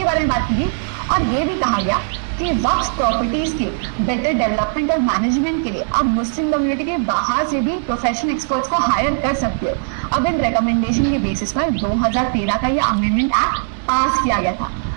बारे में बात की गई, और ये भी कहा गया कि वक्फ प्रॉपर्टीज के बेटर डेवलपमेंट और मैनेजमेंट के लिए अब मुस्लिम कम्युनिटी के बाहर से भी प्रोफेशनल एक्सपर्ट्स को हायर कर सकते हो। अब इन रिकमेंडेशन के बेसिस पर 2013 का ये अमेंडमेंट एक्ट पास किया गया था।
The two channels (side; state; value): left; silent; digital silence